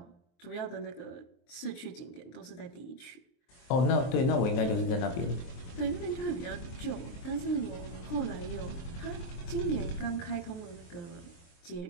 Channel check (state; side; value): late; right; 23 ms